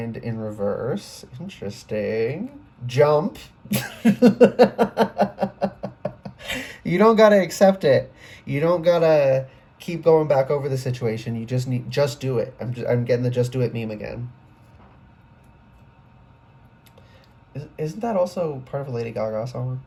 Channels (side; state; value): both; identical; correlation 1.00